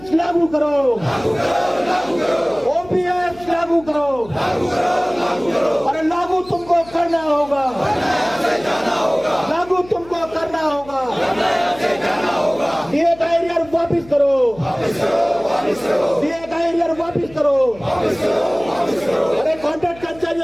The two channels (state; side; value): noise; left; hum, 21 dB below the sound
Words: लागू करो, ओपीएस लागू करो, अरे लागू तुमको करना होगा, लागू तुमको करना होगा। डीए का एरियर वापिस करो, डीए का एरियर वापिस करो। अरे कॉन्ट्रैक्ट